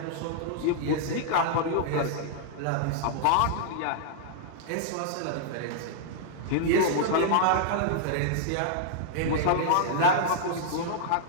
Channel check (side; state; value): both; different; correlation -0.01